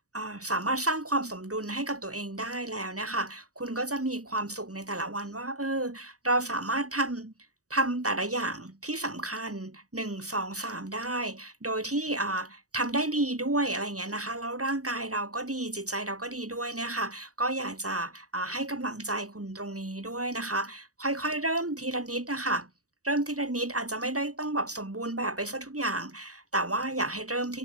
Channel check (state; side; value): late; left; 0.66 ms